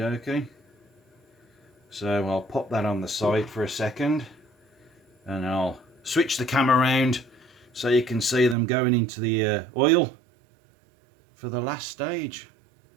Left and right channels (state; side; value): drops out; left; at 8.6 s